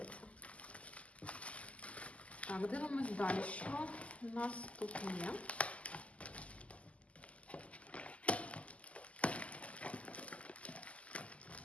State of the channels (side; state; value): right; late; 0.065 ms